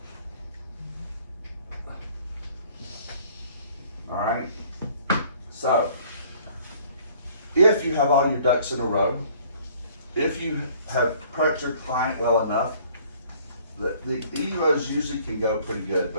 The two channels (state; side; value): inverted; both; correlation -0.56